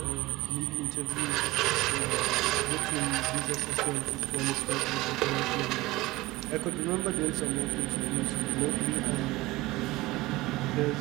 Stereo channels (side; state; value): left; quieter; 19.7 dB